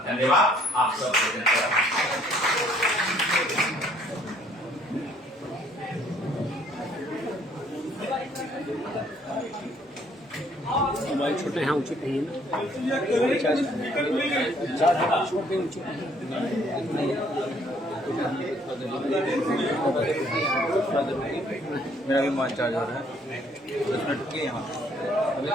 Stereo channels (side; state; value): both; normal; correlation 0.63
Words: धन्यवाद। आप सबको मोबाइल छोटे हैं, ऊंचे कहीं मेरा भी मोबाइल चार्ज हो रहा है 10 मिनट के यहाँ अभी